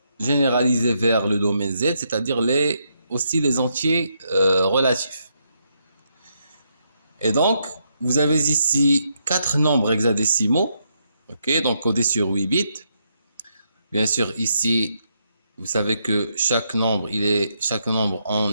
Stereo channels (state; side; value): inverted; both; correlation -0.78